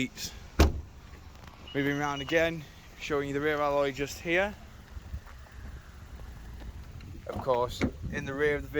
Moving around again, showing you the rear alloy just here. Of course, in the rear of the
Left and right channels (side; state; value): both; identical; correlation 1.00